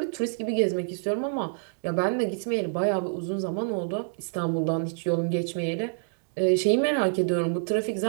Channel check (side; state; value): left; silent; digital silence